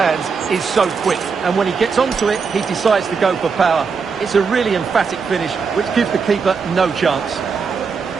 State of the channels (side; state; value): left; quieter; 5.4 dB